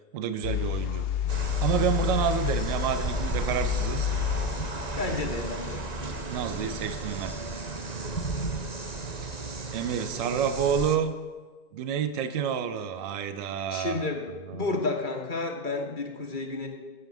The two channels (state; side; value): late; right; 1.9 ms